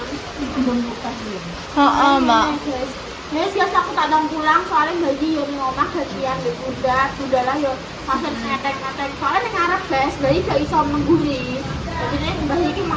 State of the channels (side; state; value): both; identical; correlation 1.00